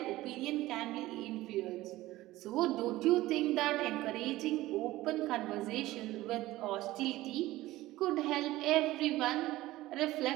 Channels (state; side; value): quieter; left; 17.1 dB